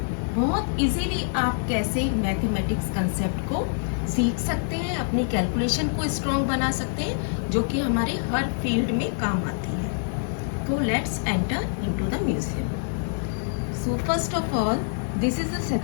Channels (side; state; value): right; silent; digital silence